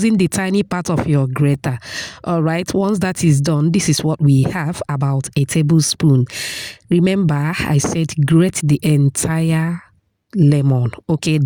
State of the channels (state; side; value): identical; both; correlation 1.00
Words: the tiny part of your grater. All right. Once that is done, this is what we have, about a tablespoon. Remember, I said grate the entire lemon. Okay,